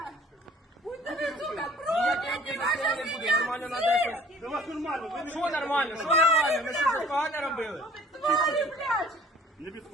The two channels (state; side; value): normal; both; correlation 0.52